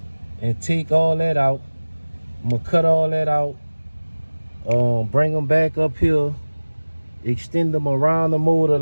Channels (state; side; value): inverted; both; correlation -1.00